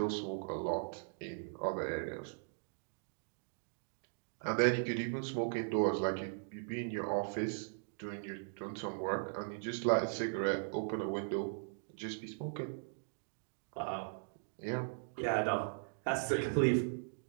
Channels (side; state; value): left; silent; digital silence